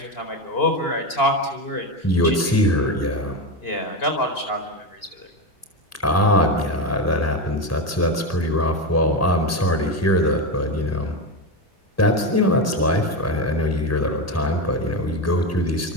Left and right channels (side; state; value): both; normal; correlation 0.14